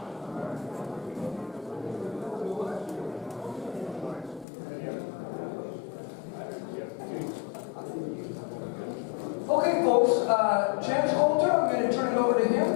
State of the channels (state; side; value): drops out; right; at 4.5 s